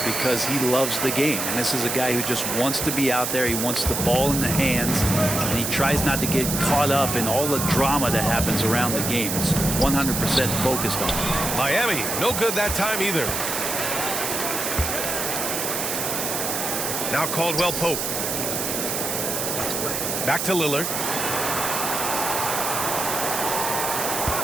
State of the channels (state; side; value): noise; right; hiss, 2 dB below the sound